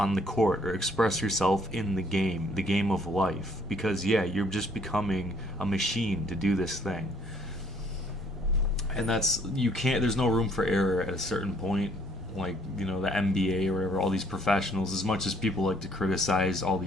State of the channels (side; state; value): both; normal; correlation 0.63